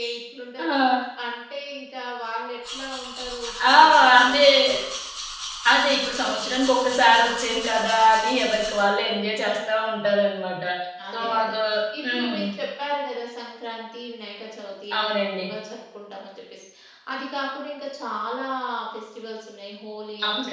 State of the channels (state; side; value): identical; both; correlation 1.00